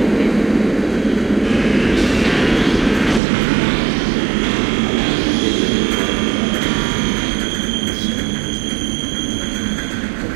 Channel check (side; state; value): left; drops out; at 3.2 s